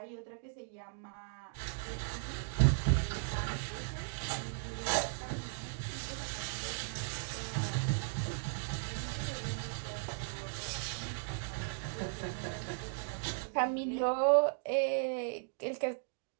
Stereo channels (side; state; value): left; silent; digital silence